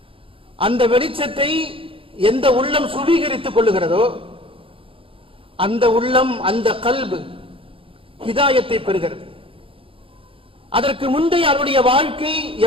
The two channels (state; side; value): late; left; 0.26 ms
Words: அந்த வெளிச்சத்தை எந்த உள்ளம் சுவீகரித்துக் கொள்ளுகிறதோ அந்த உள்ளம், அந்த கல்பு ஹிதாயத்தை பெறுகிறது. அதற்கு முந்தைய அவருடைய வாழ்க்கை